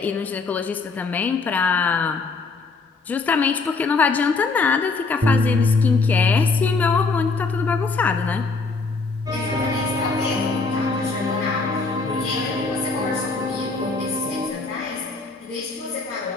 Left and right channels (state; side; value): quieter; right; 4.0 dB